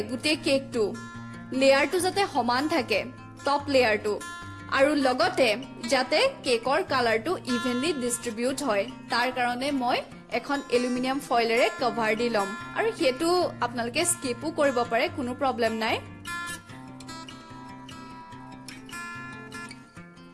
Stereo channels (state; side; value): identical; both; correlation 1.00